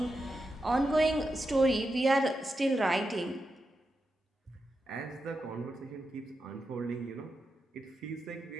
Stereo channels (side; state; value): both; normal; correlation 0.88